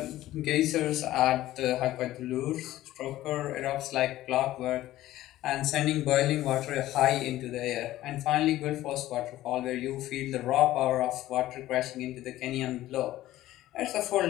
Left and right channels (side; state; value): right; quieter; 15.0 dB